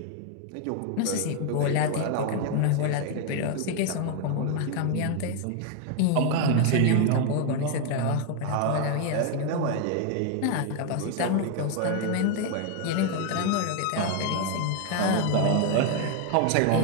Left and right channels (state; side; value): different; both; correlation 0.01